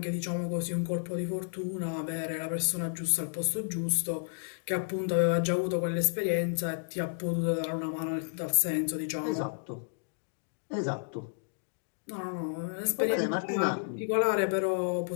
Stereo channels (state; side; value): silent; right; digital silence